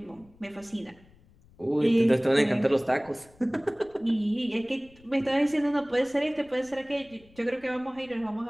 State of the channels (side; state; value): left; noise; rumble, 28 dB below the sound